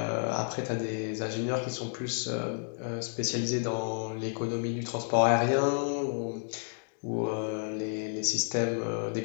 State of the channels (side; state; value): right; silent; 57 dB below the other